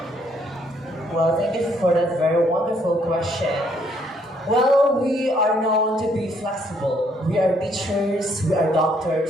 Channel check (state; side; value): normal; both; correlation 0.68